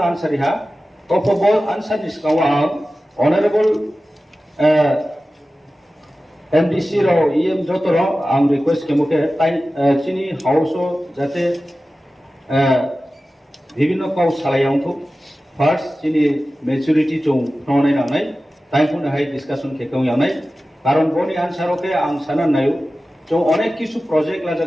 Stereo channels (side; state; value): both; normal; correlation 0.95